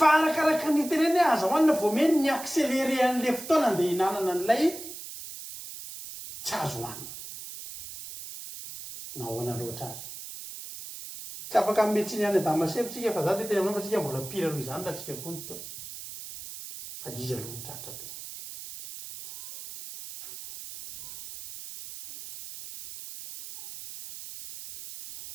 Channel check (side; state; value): right; noise; hiss, 12 dB below the sound